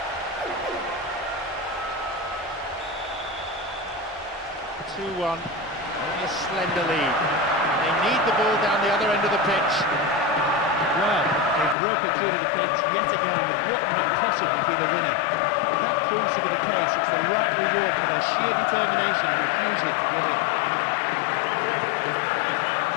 2-1, only a slender lead. They need the ball down the other end of the pitch. Well, they've broken through the defence yet again with what might possibly be the winner. If that proves to be the case, it's the right reward for their sheer determination and refusal to give up.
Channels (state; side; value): drops out; right; at 11.8 s